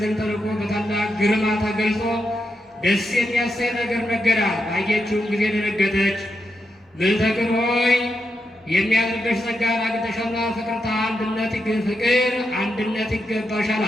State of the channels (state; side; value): normal; both; correlation 0.85